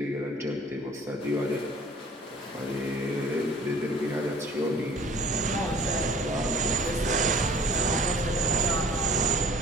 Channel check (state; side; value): normal; both; correlation 0.50